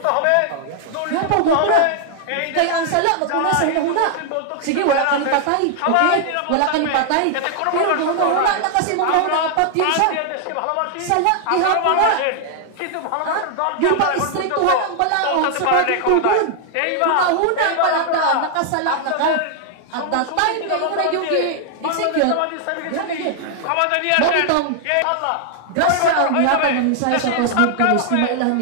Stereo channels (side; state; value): both; different; correlation 0.00